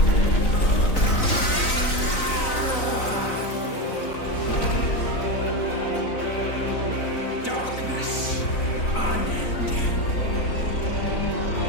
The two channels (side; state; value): right; late; 3.9 ms